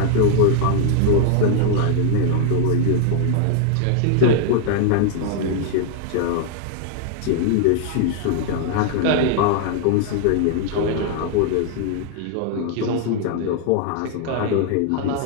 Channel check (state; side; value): different; both; correlation 0.00